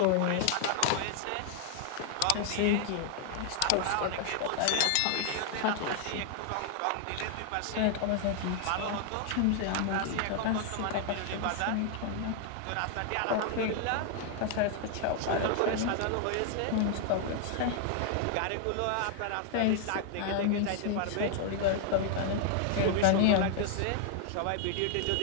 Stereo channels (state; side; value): different; both; correlation 0.00